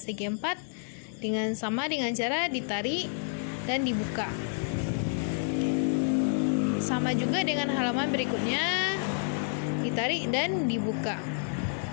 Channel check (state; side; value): silent; right; digital silence